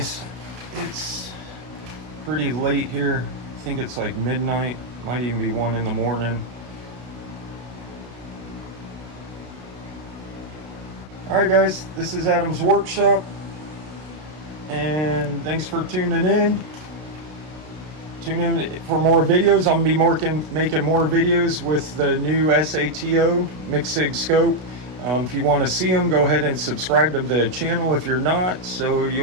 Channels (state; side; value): late; left; 32 ms